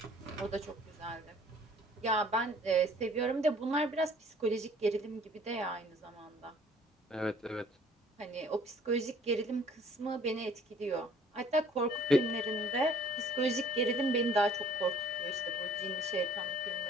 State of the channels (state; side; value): normal; both; correlation 0.55